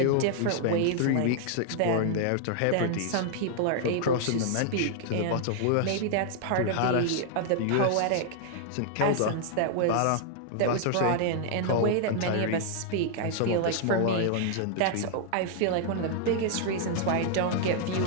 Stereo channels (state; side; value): different; both; correlation 0.00